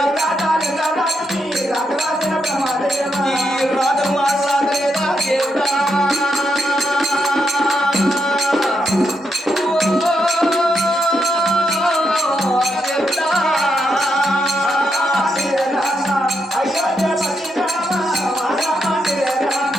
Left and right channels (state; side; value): normal; both; correlation 0.81